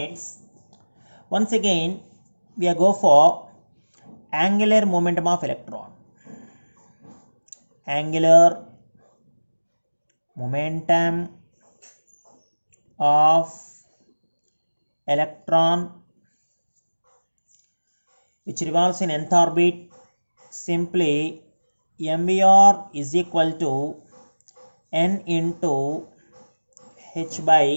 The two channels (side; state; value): both; inverted; correlation -1.00